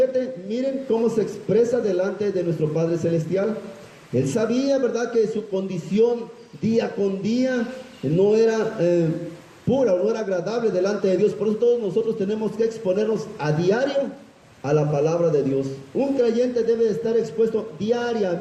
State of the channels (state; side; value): identical; both; correlation 1.00